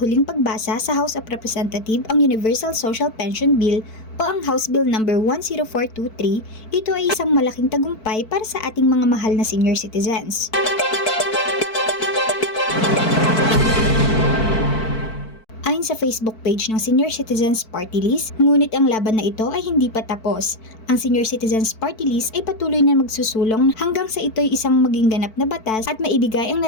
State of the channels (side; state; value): right; late; 4.5 ms